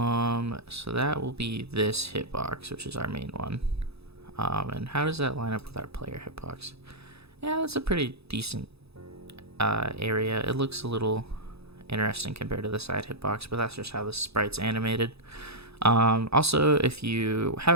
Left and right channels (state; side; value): late; left; 0.78 ms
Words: So that will be this hitbox, which is our main one. And how does that line up with our player hitbox? Yeah, that's a pretty decent area. It looks a little interesting compared to the side hitbox, but that's just how the sprite's animated. Also, if you